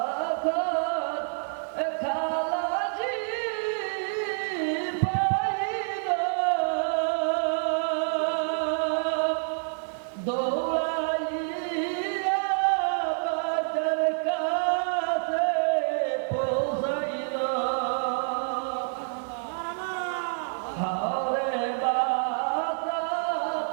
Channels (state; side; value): silent; left; digital silence